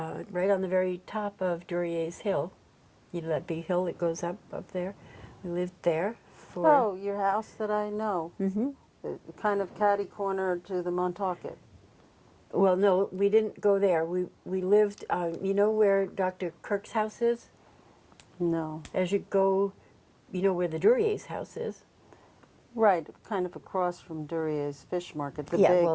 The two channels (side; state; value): both; identical; correlation 1.00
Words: right on the very top of Duryea Hill. You know that big hill that goes up there? We lived there for... Oh, your house that I know. Mm-hmm. Kind of catty corner to the Montauk. Well, no, we didn't go there. We lived, you know where Dr. Kirk's house is? No. As you go, you know where the Duryea's house is? Right, kind of across from Duryea's Fish Market, the Yeah, big